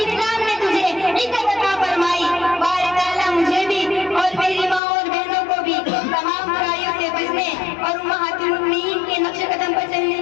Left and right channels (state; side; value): drops out; right; at 4.8 s